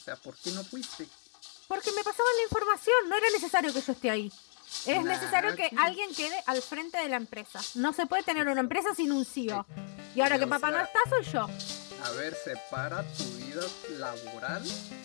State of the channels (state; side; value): silent; right; 56 dB below the other